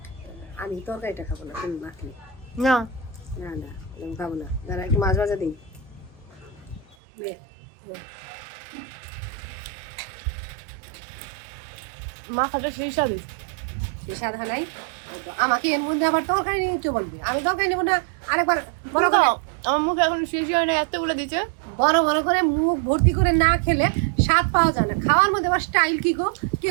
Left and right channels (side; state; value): left; drops out; at 7.0 s